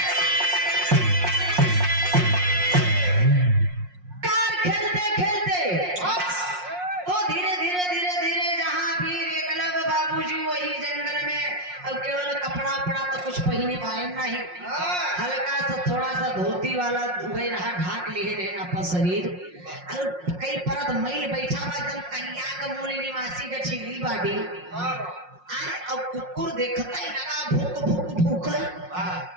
कार खेलते खेलते तो धीरे धीरे धीरे धीरे जहाँ वीर एकलव्य बाबूजी वही जंगल में अब केवल कपड़ा उपड़ा तो कुछ पहने पाए नहीं हल्का सा थोड़ा सा धोती वाला वही रहा ढाक लिए रहे अपन शरीर और कई परत मैल बैठा हुआ एकदम कन्या का मूल निवासी का छिली बाटी अब कुकुर देखता ही लगा भूक भूक भूकर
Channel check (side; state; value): left; late; 5.6 ms